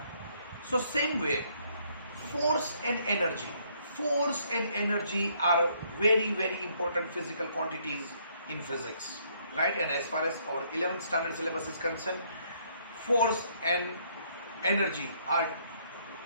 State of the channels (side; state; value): both; inverted; correlation -0.67